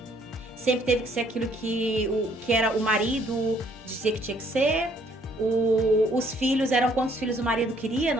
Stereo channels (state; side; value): normal; both; correlation 0.65